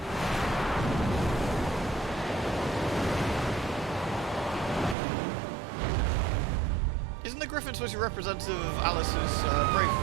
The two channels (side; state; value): left; drops out; at 5.0 s